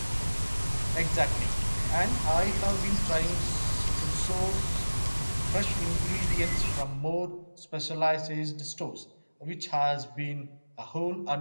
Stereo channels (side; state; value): both; inverted; correlation -1.00